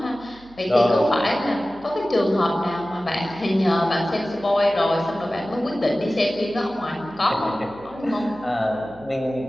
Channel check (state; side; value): noise; right; hum, 24 dB below the sound